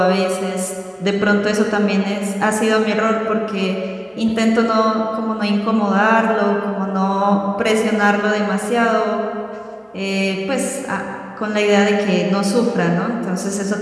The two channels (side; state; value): both; identical; correlation 1.00